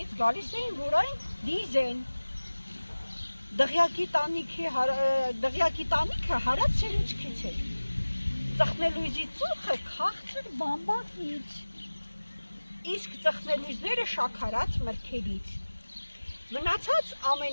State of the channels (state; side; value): inverted; both; correlation -1.00